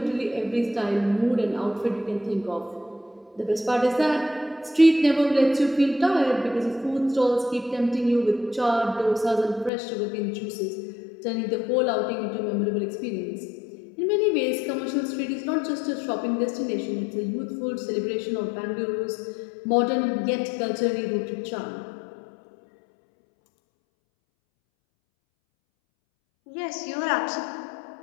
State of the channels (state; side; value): drops out; right; at 9.7 s